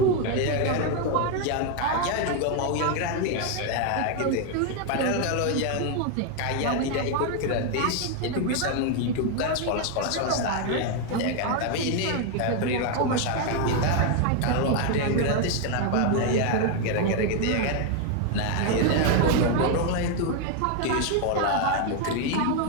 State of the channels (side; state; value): both; different; correlation 0.01